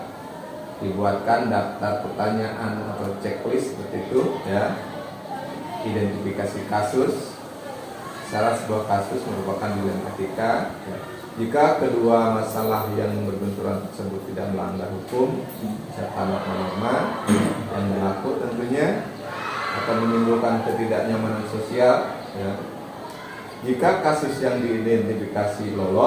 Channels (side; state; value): both; identical; correlation 1.00